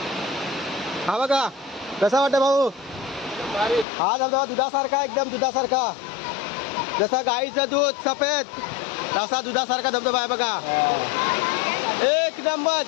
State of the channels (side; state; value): right; drops out; at 3.9 s